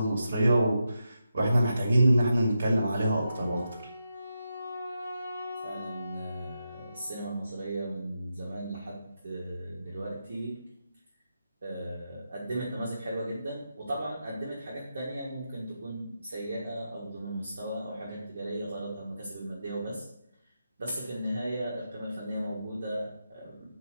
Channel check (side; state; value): both; inverted; correlation -0.87